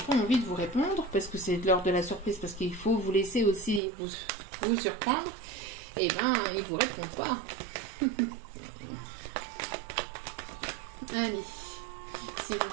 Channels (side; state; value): left; drops out; at 3.8 s